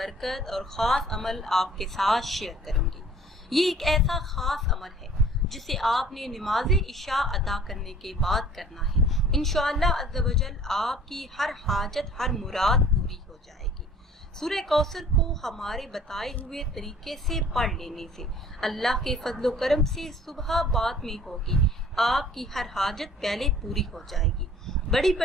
और ख़ास अमल आपके साथ शेयर करूंगी। ये एक ऐसा ख़ास अमल है जिसे आपने नमाज इशा अदा करने के बाद करना है। इंशाअल्लाह अज़्ज़ व जल आपकी हर हाजत, हर मुराद पूरी हो जाएगी। सूरह कौसर को हमारे बताए हुए तरीके से पढ़ लेने से अल्लाह के फजलो करम से सुबह बाद में होगी आपकी हर हाजत पहले पूरी हो जाएगी। बड़ी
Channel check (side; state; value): both; normal; correlation 0.51